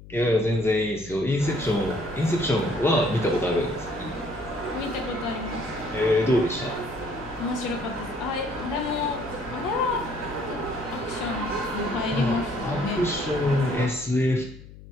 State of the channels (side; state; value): left; noise; hum, 17 dB below the sound